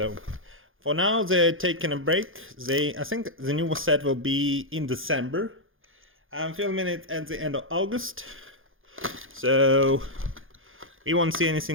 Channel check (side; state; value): left; late; 0.59 ms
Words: for now they're taking a break. I think the new set will be in December. I'm filming it at the end of August, so we won't see